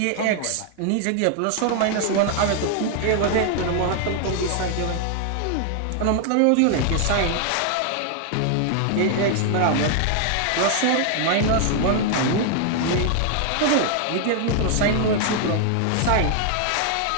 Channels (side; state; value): both; different; correlation 0.00